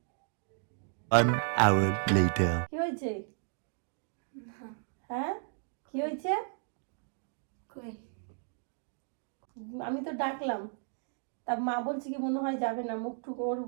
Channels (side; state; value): left; silent; 55 dB below the other